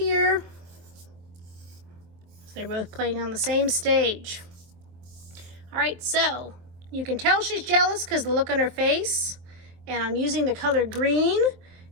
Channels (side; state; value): left; late; 24 ms